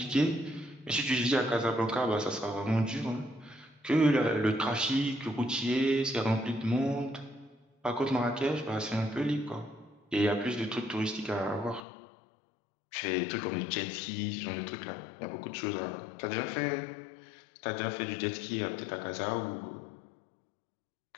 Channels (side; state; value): right; drops out; at 11.8 s